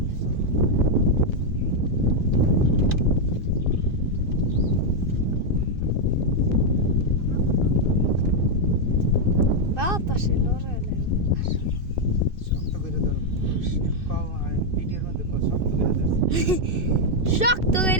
বাতাসে লড়াইলে শক্ত করে ধরো কও ভিডিওর মধ্যে কও শক্ত করে ধরছি শক্ত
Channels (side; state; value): left; late; 2.6 ms